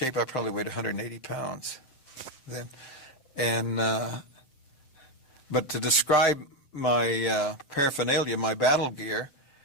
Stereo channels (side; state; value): right; late; 7.7 ms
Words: I probably weighed 180 pounds then. And but to describe my paraphernalia, my battle gear,